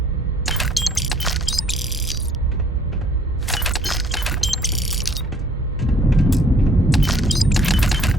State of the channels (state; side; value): normal; both; correlation 0.59